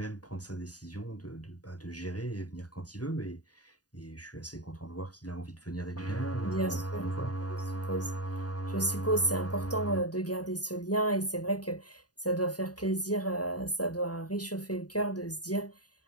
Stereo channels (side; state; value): right; late; 0.68 ms